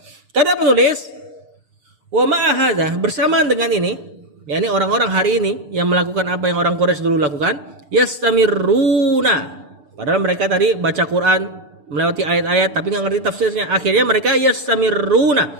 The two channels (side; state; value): left; late; 6.7 ms